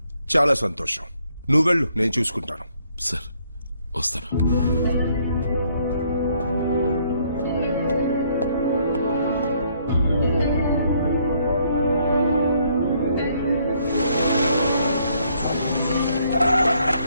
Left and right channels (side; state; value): both; inverted; correlation -0.68